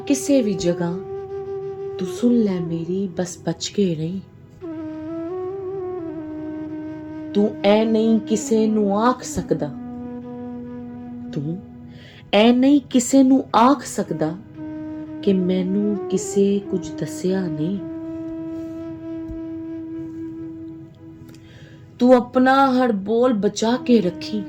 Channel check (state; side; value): identical; both; correlation 1.00